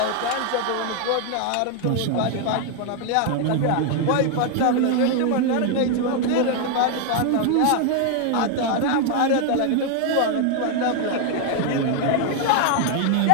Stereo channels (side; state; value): both; different; correlation 0.00